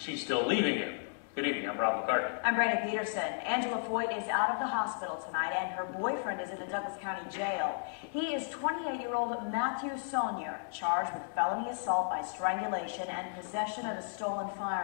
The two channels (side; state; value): right; silent; digital silence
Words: still leaving him. Good evening, I'm Rob McCartney. I'm Brandon Peterson. Angela Foyt is out of the hospital tonight, and her boyfriend is in the Douglas County Jail. He is 28-year-old Matthew Saunier, charged with felony assault by strangulation and possession of a stolen